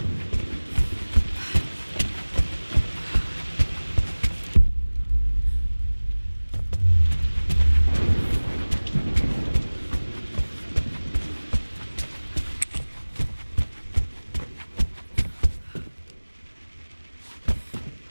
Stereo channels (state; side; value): inverted; both; correlation -1.00